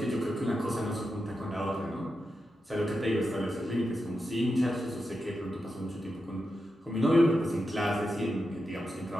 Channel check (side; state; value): both; normal; correlation 0.88